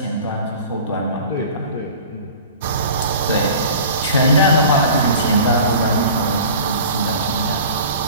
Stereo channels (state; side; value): inverted; both; correlation -0.41